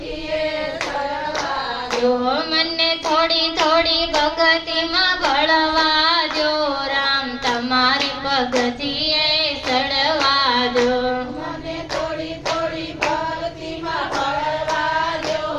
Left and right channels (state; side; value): identical; both; correlation 1.00